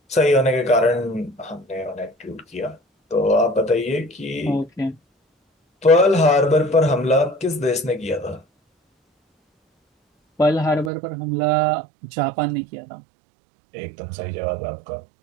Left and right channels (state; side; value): drops out; left; at 10.9 s